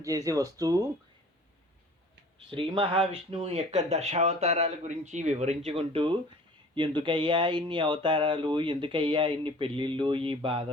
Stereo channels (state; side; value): normal; both; correlation 0.47